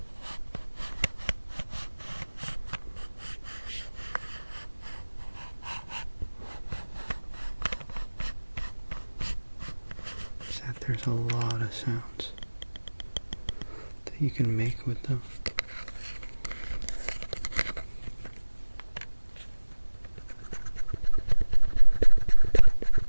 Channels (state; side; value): inverted; both; correlation -1.00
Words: There's a lot of sounds that you can make with them.